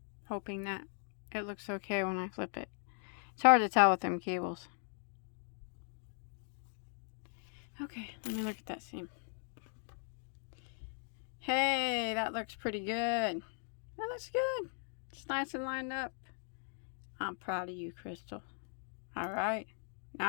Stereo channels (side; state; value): right; silent; 52 dB below the other